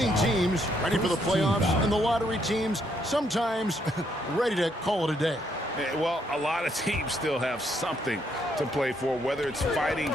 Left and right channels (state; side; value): normal; both; correlation 0.73